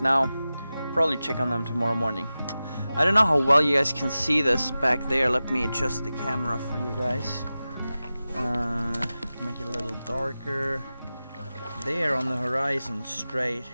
Probably check on them tomorrow morning. I don't know how well you guys can see this back there. Let me adjust the camera for you guys. Make it a little darker. There on the horizon, straight.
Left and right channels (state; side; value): inverted; both; correlation -0.95